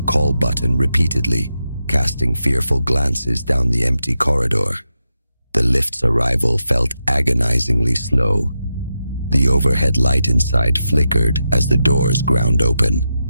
call button repeatedly, casting fearful glances down the empty corridor. The lift's arrival felt agonizingly slow. The overhead light inside flickered as the doors ground open.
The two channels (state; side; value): inverted; both; correlation -0.88